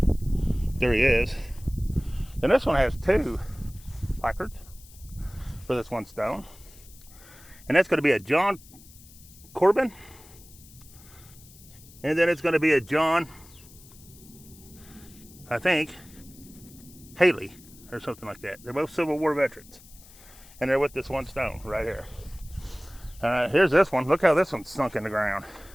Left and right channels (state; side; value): noise; left; hiss, 22 dB below the sound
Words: There he is. Then this one has two placards for this one stone, and that's going to be a John Corbin, and then it's going to be a John, I think, Haley or something like that. They're both Civil War veterans, and they're with this one stone right here. Here's this one. Look how this one's sunk in the ground.